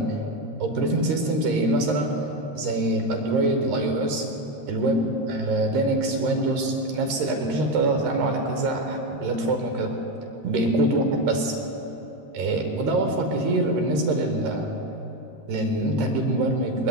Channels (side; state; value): left; late; 13 ms